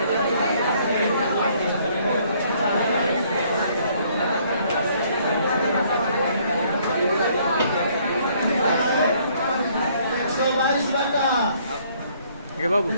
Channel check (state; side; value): inverted; both; correlation -0.64